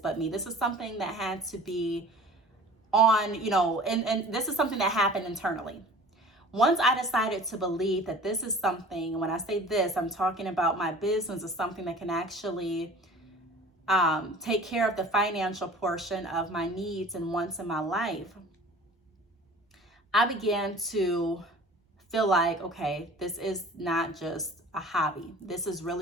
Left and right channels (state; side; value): normal; both; correlation 0.44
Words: me, this is something that had to be on, and this is something that happened internally. Once I decided to believe that this is something, when I say this, I'm talking about my business is something that can actually take care of the financial portion of my needs and wants in my life, I began to feel like, okay, this is not just a hobby. This is